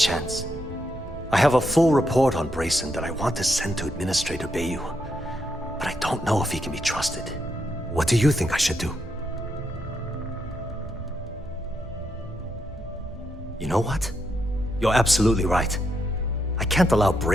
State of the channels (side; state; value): both; normal; correlation 0.79